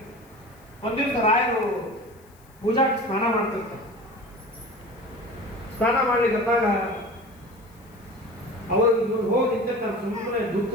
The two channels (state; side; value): noise; left; hiss, 29 dB below the sound